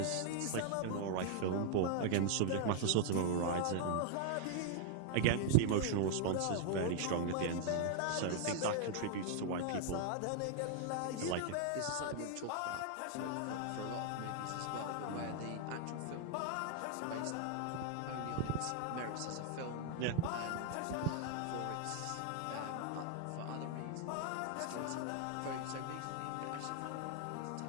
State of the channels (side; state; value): both; different; correlation 0.00